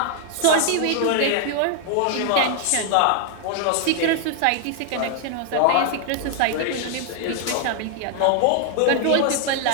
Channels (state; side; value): different; both; correlation 0.00